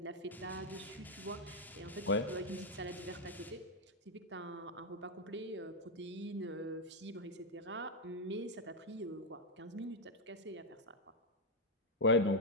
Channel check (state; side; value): normal; both; correlation 0.01